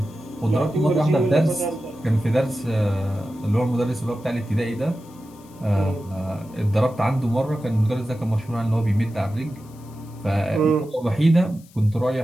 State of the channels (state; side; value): noise; left; hiss, 27 dB below the sound